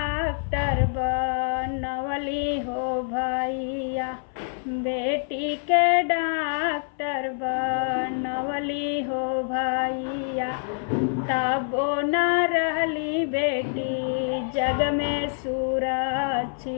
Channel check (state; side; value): silent; right; 59 dB below the other